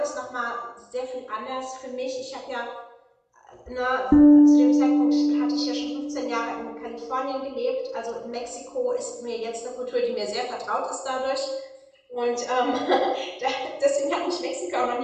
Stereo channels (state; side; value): identical; both; correlation 1.00